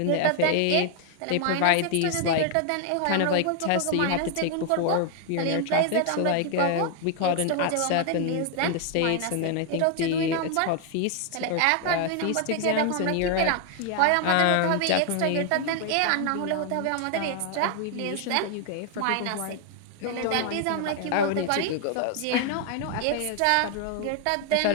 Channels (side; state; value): both; different; correlation 0.00